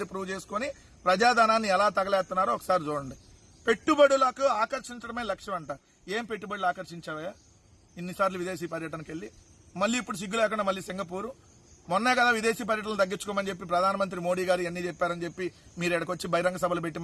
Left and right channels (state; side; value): identical; both; correlation 1.00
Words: ప్రూవ్ చేసుకుని ప్రజాధనాన్ని ఎలా తగలేస్తున్నారో ఒకసారి చూడండి. పెట్టుబడులకు ఆకర్షించడమే లక్ష్యం అంట. ఏం పెట్టుబడులు ఆకర్షించావా ఇన్నిసార్లు విదేశీ పర్యటనకి వెళ్ళి? మళ్ళీ ఇప్పుడు సిగ్గు లేకుండా మళ్ళీ సింగపూర్. మొన్నే కదా విదేశీ పర్యటనలు తగ్గించుకోమని చెప్పి ప్రధానమంత్రి మోడీ గారు అన్ని చెప్పారని చెప్పి మీరు ఎక్కడికొచ్చి బహిరంగ సభలు పెట్టి